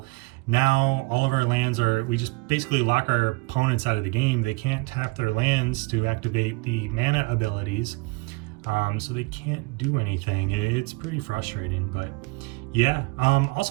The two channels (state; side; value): quieter; left; 26.5 dB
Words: now all of our lands we just basically lock our opponents out of the game. They can't tap their lands to activate the mana abilities. so they can't do anything. It's pretty frustrating, but yeah.